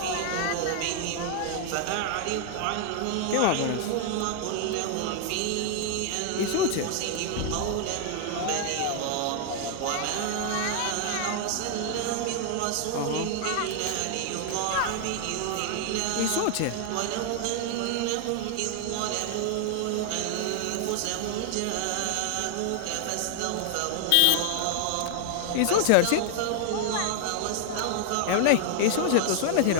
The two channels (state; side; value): different; both; correlation 0.00